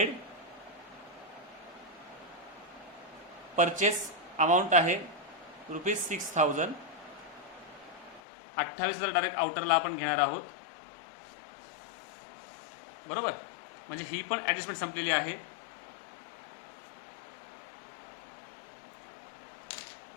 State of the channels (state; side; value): drops out; right; at 8.2 s